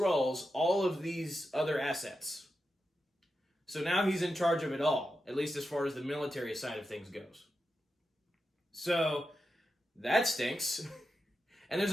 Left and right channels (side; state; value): both; normal; correlation 0.89